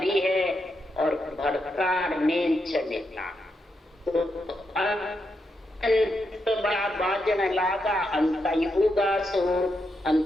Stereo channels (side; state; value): both; normal; correlation 0.83